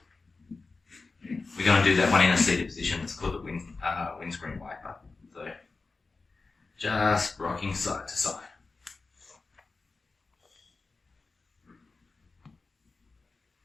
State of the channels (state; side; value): quieter; right; 3.9 dB